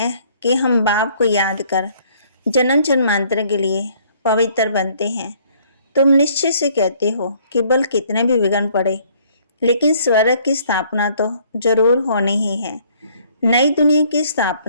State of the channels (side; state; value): both; inverted; correlation -0.61